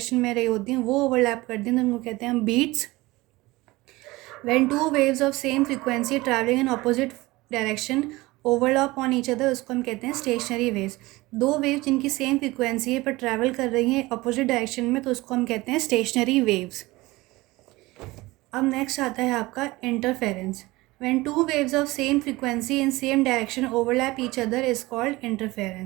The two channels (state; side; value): quieter; left; 20.5 dB